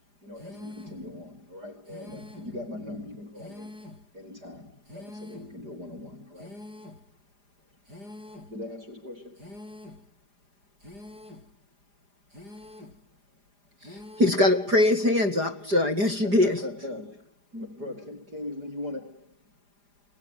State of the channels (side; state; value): left; late; 4.9 ms